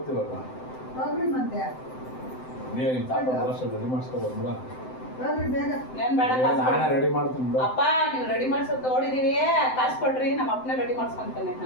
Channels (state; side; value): late; right; 7.8 ms